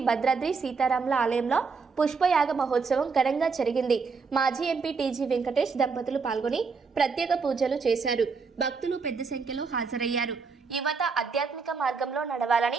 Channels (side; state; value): left; quieter; 5.0 dB